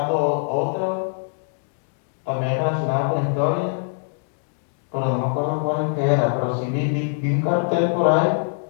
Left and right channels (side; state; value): right; silent; digital silence